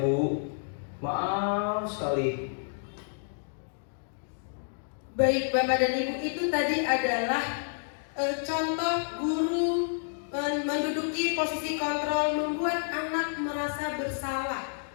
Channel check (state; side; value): silent; right; digital silence